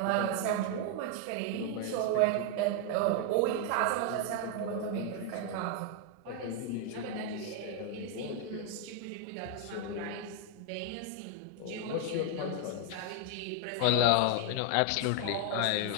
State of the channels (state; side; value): different; both; correlation 0.00